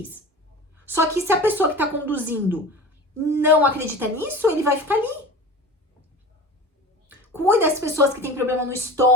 Só que se a pessoa que tá conduzindo não acredita nisso, ele vai ficar ali. Cuide das pessoas que têm problema no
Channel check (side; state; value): both; normal; correlation 0.35